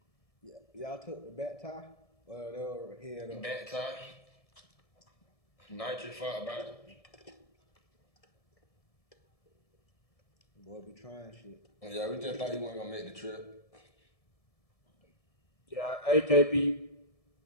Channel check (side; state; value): right; late; 1.7 ms